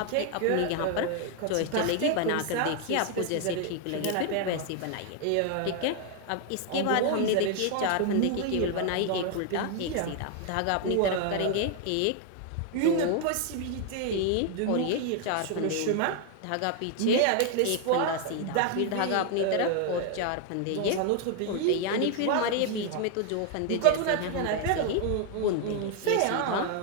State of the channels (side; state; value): both; different; correlation 0.00